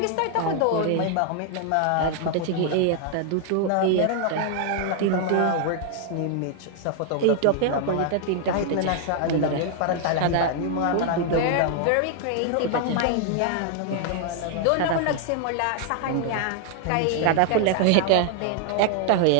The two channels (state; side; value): different; both; correlation 0.00